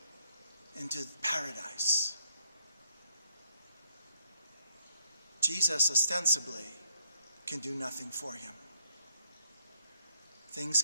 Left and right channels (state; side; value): inverted; both; correlation -0.72